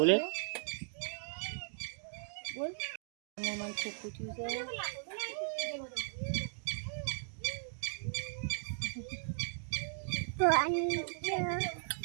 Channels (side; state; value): left; silent; digital silence